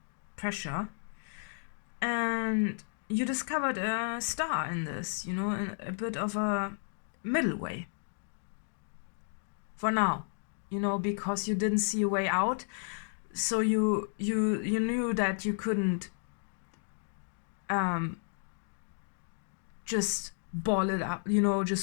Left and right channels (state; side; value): silent; right; digital silence